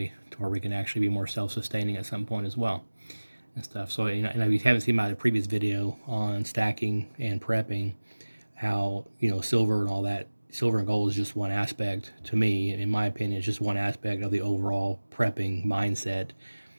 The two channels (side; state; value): both; inverted; correlation -1.00